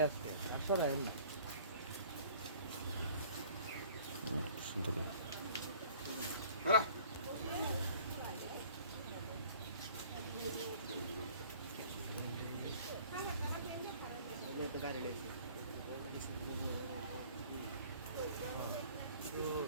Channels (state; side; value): inverted; both; correlation -0.52